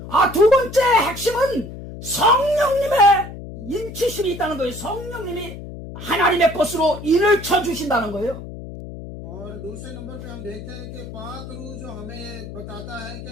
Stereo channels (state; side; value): noise; left; hum, 11 dB below the sound